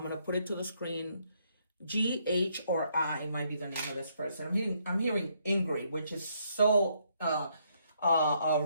gonna put it to the screen. G, H, or I might be the name of this person. I'm hearing Ingrid, which is so a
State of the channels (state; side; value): inverted; both; correlation -0.72